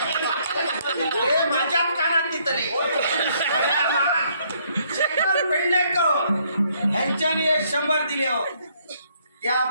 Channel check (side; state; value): both; inverted; correlation -0.68